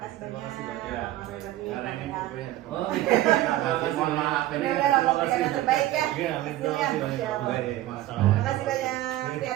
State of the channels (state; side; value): quieter; left; 15.1 dB